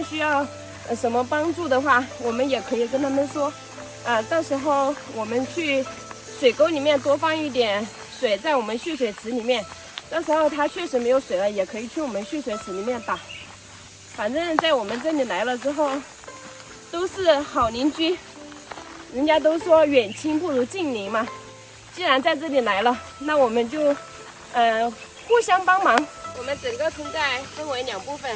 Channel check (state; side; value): identical; both; correlation 1.00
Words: 需要什么帮助的话，我们也可以跟他们说，到时候我们去水沟里面多放一点水在我们蓄水池里面，到时候他确实没有水了，也可以去我们蓄水池里面打。反正在我们这里来了之后，都是好邻居，人家都说远亲不如近邻嘛。既然在这里来了，那我们就互相帮忙。我们整个村寨分为2部分，